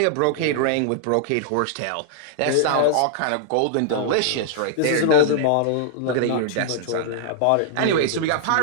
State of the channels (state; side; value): different; both; correlation -0.01